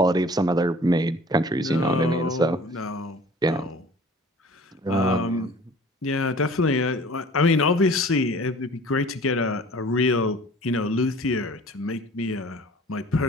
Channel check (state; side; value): normal; both; correlation 0.47